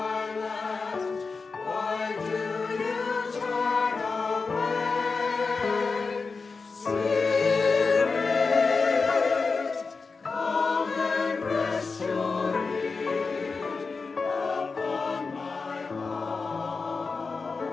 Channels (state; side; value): quieter; right; 4.5 dB